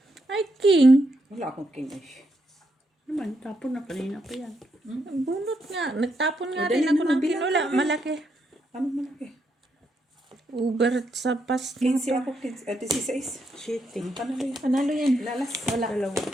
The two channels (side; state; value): both; normal; correlation 0.79